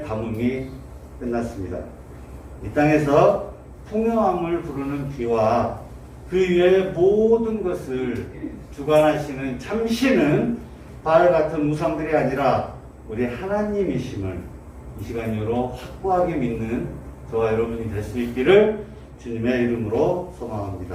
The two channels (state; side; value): identical; both; correlation 1.00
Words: 가뭄이 끝났습니다. 이 땅에서 풍요함을 부르는 비와 그 위에 모든 것을 주관하시는 참신은 바알 같은 우상들이 아니라 우리 하나님이심을 이 시간 이후로 확고하게 믿는 저와 여러분이 될 수 있기를 주님의 이름으로